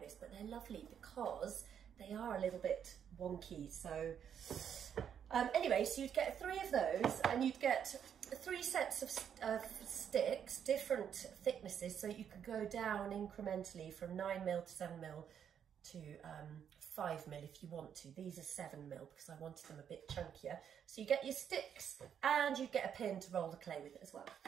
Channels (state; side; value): quieter; left; 8.5 dB